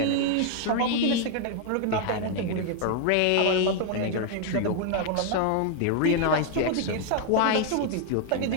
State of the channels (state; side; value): different; both; correlation 0.00